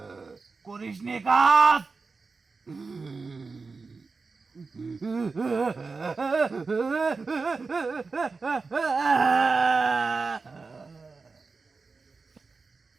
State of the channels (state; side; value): quieter; left; 4.3 dB